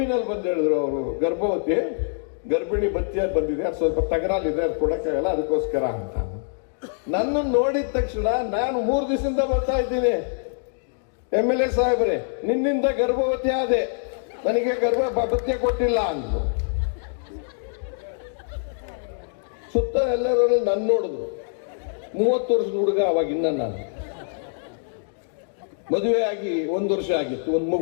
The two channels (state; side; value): silent; right; digital silence